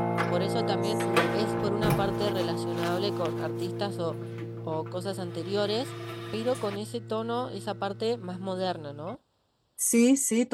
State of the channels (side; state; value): both; identical; correlation 1.00